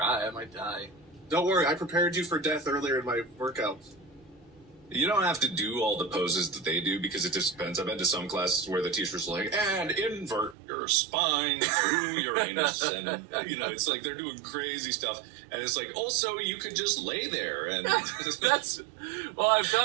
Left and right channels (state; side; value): drops out; left; at 10.6 s